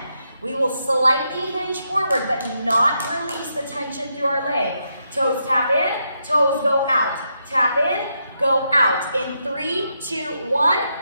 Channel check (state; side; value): inverted; both; correlation -0.81